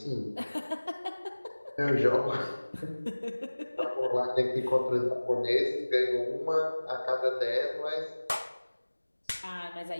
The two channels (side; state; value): both; inverted; correlation -1.00